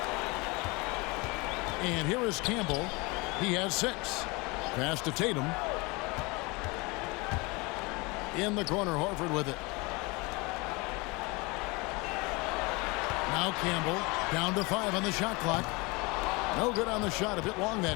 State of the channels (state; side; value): quieter; right; 26.1 dB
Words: And here is Campbell. He has 6. Pass to Tatum. In the corner, Horford with it. Now Campbell down to 5 on the shot clock. No good on the shot, a bit long